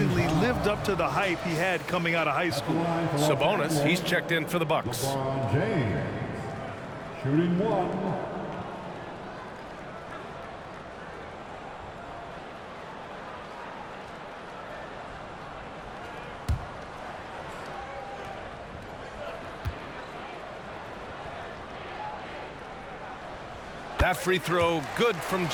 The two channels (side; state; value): both; identical; correlation 1.00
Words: lived up to the hype he had coming out of high school. Sabonis, he's checked in for the Bucks. LeBron James. Shooting 1. That free throw good from